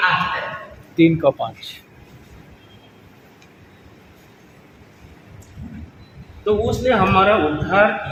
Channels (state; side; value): identical; both; correlation 1.00